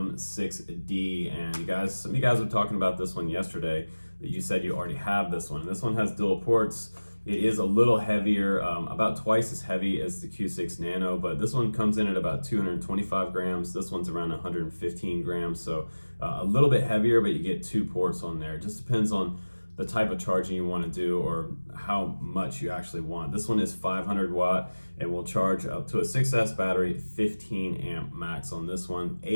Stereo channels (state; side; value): inverted; both; correlation -1.00